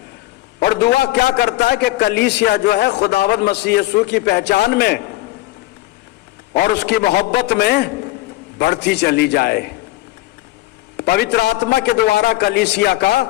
और दुआ क्या करता है कि कलीसिया जो है खुदावंद मसीह यीशु की पहचान में और उसकी मोहब्बत में बढ़ती चली जाए। पवित्र आत्मा के द्वारा कलीसिया का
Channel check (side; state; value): right; quieter; 17.3 dB